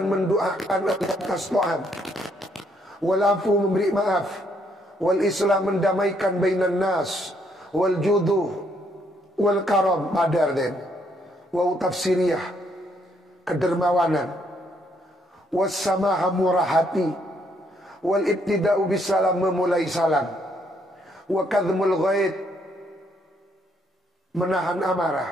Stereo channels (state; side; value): normal; both; correlation 0.71